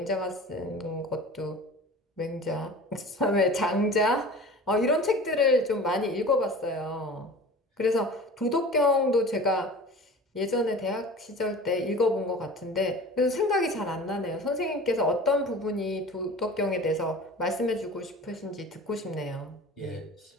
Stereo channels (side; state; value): both; normal; correlation 0.39